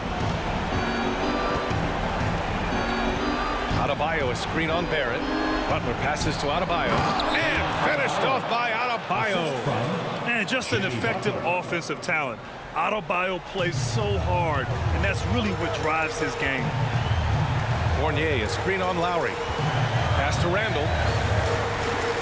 Adebayo, a screen on Barrett. Butler passes to Adebayo. And finished off by Adebayo. And just an effective offensive talent. Adebayo plays so hard, and that's really what drives his game. Fournier, a screen on Lowry. Pass to Randall.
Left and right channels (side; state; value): both; identical; correlation 1.00